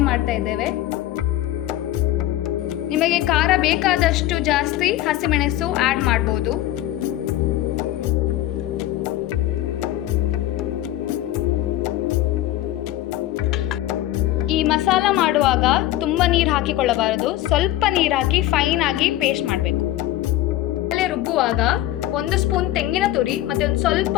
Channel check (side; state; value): right; quieter; 14.7 dB